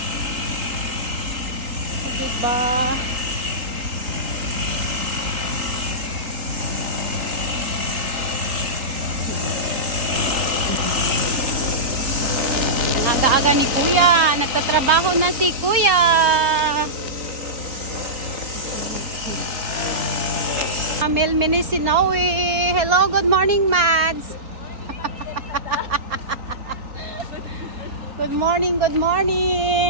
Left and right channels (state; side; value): late; left; 4.1 ms